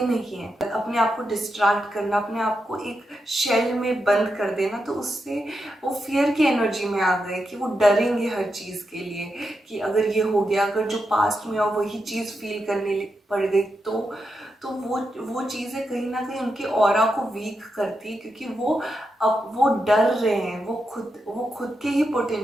है, अपने आप को डिस्ट्रैक्ट करना, अपने आप को एक शेल में बंद कर देना, तो उससे वो फियर की एनर्जी में आ गए कि वो डरेंगे हर चीज़ के लिए, कि अगर ये हो गया, अगर जो पास्ट में हो वही चीज़ फील करने पड़ गई, तो वो चीज़ें कहीं ना कहीं उनके ऑरा को वीक करती है, क्योंकि वो डर रहे हैं, वो खुद के ही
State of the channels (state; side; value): normal; both; correlation 0.86